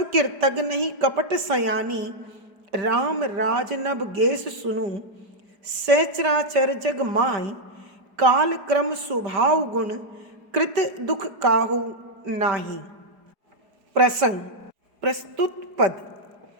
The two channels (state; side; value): late; left; 4.9 ms